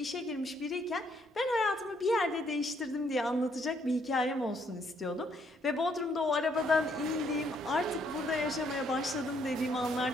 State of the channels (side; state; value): both; normal; correlation 0.70